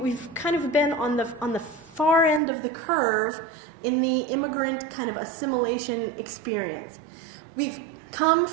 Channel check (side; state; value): left; drops out; at 2.4 s